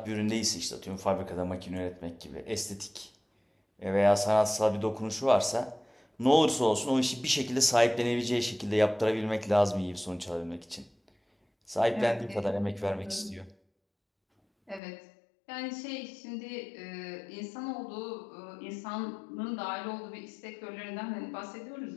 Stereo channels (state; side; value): drops out; right; at 14.8 s